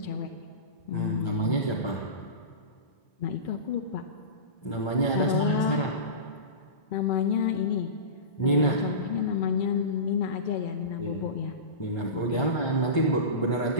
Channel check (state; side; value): late; right; 1.5 ms